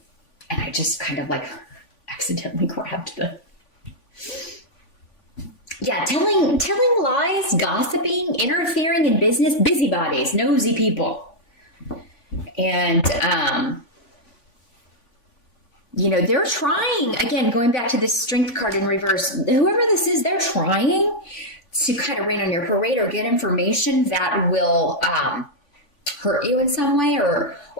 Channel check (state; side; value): late; right; 3.5 ms